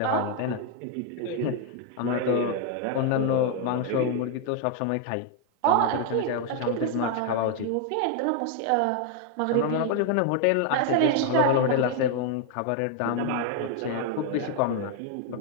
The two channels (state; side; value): different; both; correlation 0.00